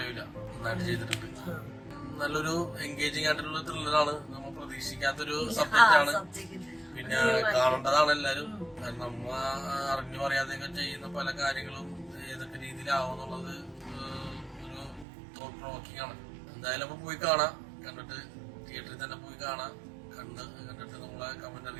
നന്നായിട്ട് ചെയ്തിട്ടുണ്ട്. നല്ലൊരു എൻഗേജിങ് ആയിട്ടുള്ള ത്രില്ലറാണ്. നമ്മൾ പ്രതീക്ഷിക്കാത്തൊരു സബ്ജക്റ്റ് ആണ്. പിന്നെ കാണേണ്ടതാണ് എല്ലാരും. കാരണം നമ്മ അറിഞ്ഞു പറയാതെയൊക്കെ ചെയ്യുന്ന പല കാര്യങ്ങളും ഏതൊക്കെ രീതിയിലാവും എന്നുള്ളത് ഒരു തോട്ട് പ്രൊവോക്കിംഗ് ആണ്. എന്തായാലും അപ്പൊ പോയി കാണാം. കണ്ടിട്ട് തിയേറ്ററിൽ തന്നെ പോയി കാണാം. കണ്ടിട്ട് നമ്മളെ കമന്റ്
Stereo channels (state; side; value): drops out; left; at 15.1 s